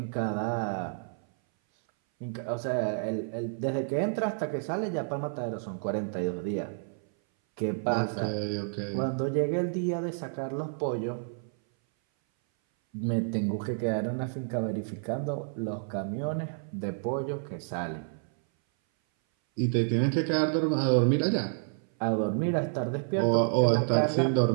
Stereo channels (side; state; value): left; silent; 57 dB below the other